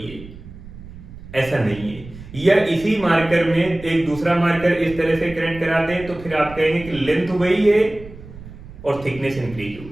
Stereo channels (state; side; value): noise; right; rumble, 16 dB below the sound